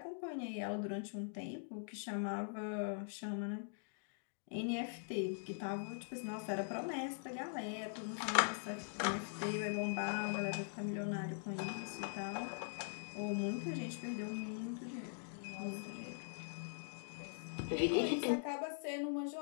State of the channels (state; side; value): silent; right; digital silence